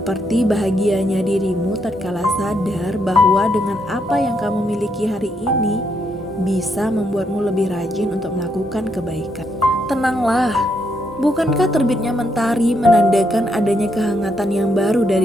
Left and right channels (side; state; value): both; normal; correlation 0.77